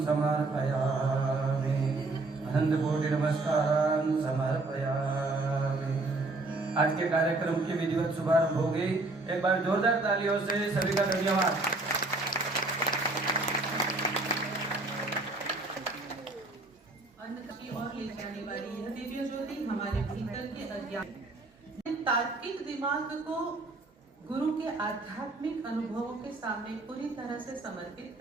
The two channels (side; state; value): left; quieter; 3.1 dB